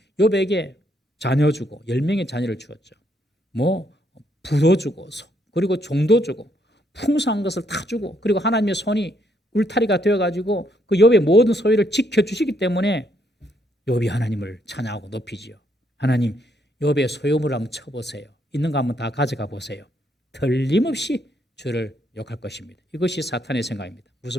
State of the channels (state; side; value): normal; both; correlation 0.73